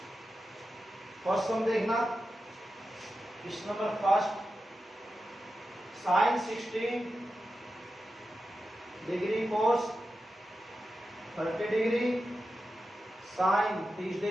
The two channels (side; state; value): both; normal; correlation 0.91